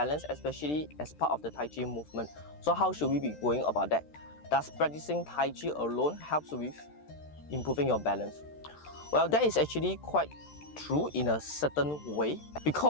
especially as part of the Tai Chi movement. So how should we be going about that? Does practicing Tai Chi alone helps with improving your balance? Well, that is actually quite true in a certain way,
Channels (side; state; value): right; late; 13 ms